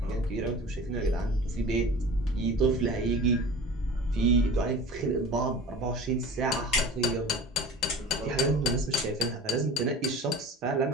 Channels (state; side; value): normal; both; correlation 0.38